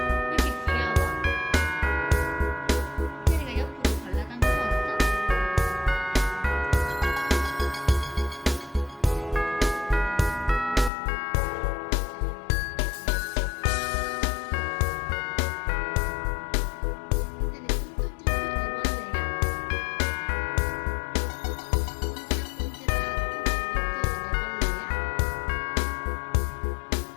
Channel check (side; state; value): right; drops out; at 10.9 s